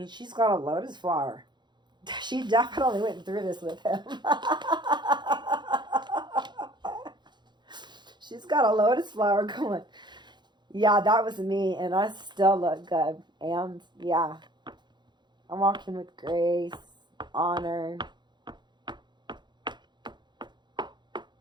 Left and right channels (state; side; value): late; left; 0.21 ms